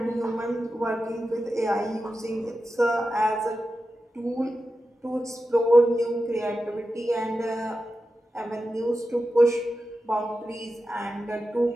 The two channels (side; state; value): both; normal; correlation 0.92